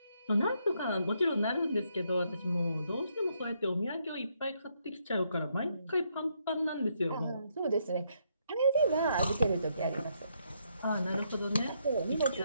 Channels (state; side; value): inverted; both; correlation -0.75